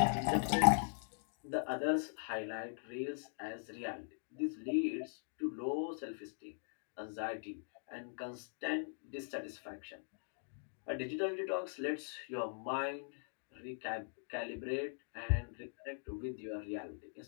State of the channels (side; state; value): right; silent; digital silence